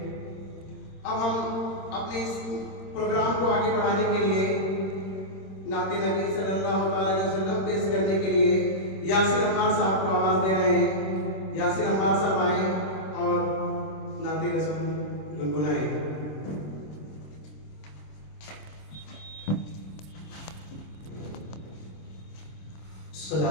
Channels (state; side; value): late; right; 26 ms